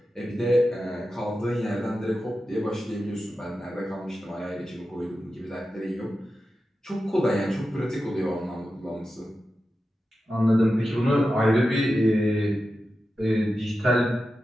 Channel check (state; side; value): normal; both; correlation 0.92